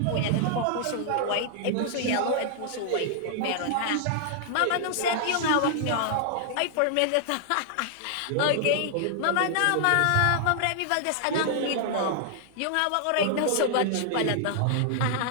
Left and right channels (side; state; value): both; different; correlation -0.01